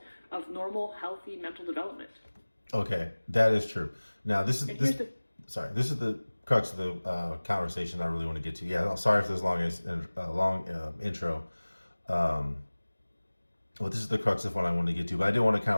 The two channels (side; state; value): both; inverted; correlation -1.00